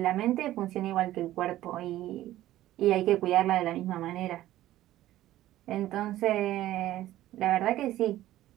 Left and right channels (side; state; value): left; quieter; 14.5 dB